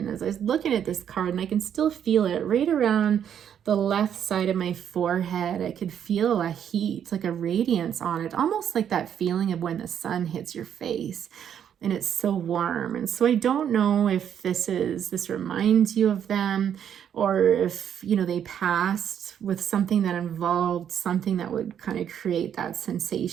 as I was looking at this card, and I can still feel it right around the left side of my forehead, I could feel a heat, like a radiance on it, almost like that feeling of when the sun hits your face and it's so warm. And so I don't know if this reminds you of them, or if they passed with something that involved something that would kind of create that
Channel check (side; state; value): left; quieter; 9.0 dB